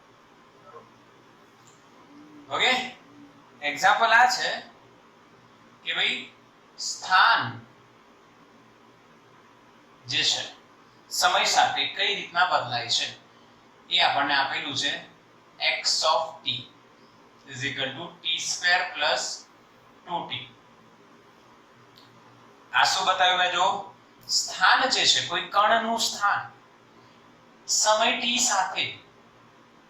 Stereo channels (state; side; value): identical; both; correlation 1.00